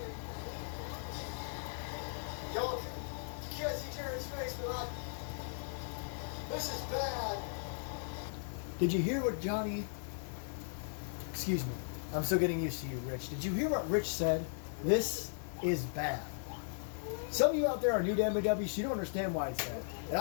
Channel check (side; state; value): right; silent; digital silence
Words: Y'all, you can't see Jared's face, but this is bad. Did you hear what Johnny... Excuse me. I'm still getting used to you, Rich. Did you hear what Rich said? This is bad. Some of you out there are new to MAW, so you don't understand why it's bad. And